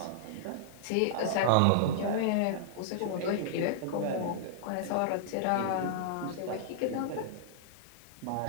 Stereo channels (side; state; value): both; different; correlation -0.02